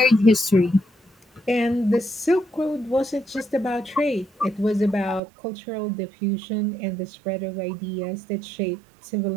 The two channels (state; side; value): drops out; left; at 5.2 s